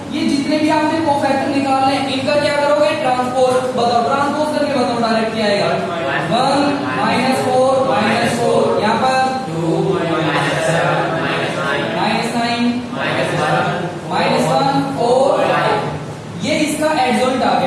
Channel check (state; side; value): identical; both; correlation 1.00